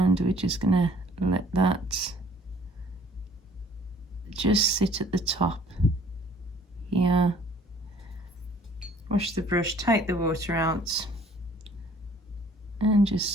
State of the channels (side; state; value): both; normal; correlation 0.56